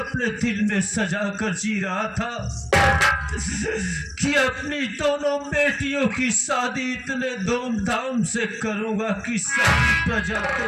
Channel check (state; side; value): identical; both; correlation 1.00